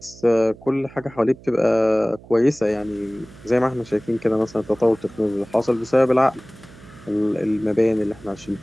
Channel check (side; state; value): right; noise; hum, 21 dB below the sound